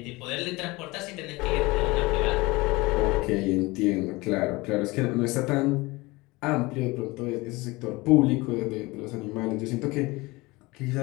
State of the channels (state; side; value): quieter; right; 22.6 dB